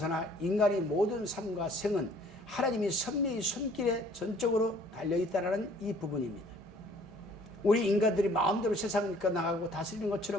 인간의 모든 삶과 생은 하나님이 섭리의 손길에 전적으로 달려있다는 이 부분입니다. 우리 인간들이 마음대로 세상을 이끌어나가고 다스리는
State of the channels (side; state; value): both; normal; correlation 0.56